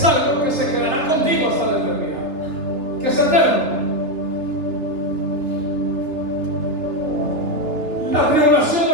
algo que se quedará contigo hasta la eternidad, que es eterno. La tribulación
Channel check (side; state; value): left; late; 3.3 ms